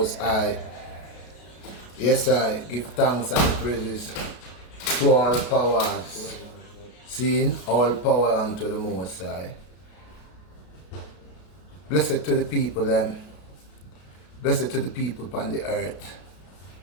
High. Yes, I give thanks and praises to all powers. Seeing all power unto the Most High. Blessed to the people, them. Blessed to the people upon the earth.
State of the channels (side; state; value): right; late; 33 ms